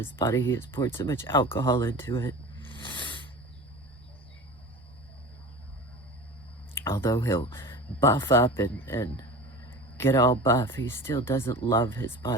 body. He has poured so much alcohol into it. Although he'll buff up and get all buff, he still doesn't love his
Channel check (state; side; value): normal; both; correlation 0.34